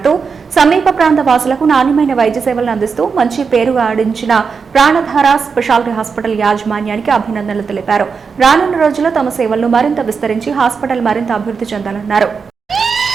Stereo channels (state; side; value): quieter; left; 5.5 dB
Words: సమీప ప్రాంత వాసులకు నాణ్యమైన వైద్య సేవలను అందిస్తూ మంచి పేరు ఆడించిన ప్రాణధార స్పెషాలిటీ హాస్పిటల్ యాజమాన్యానికి అభినందనలు తెలిపారు. రానున్న రోజుల్లో తమ సేవలను మరింత విస్తరించి హాస్పిటల్ మరింత అభివృద్ధి చెందాలన్నారు.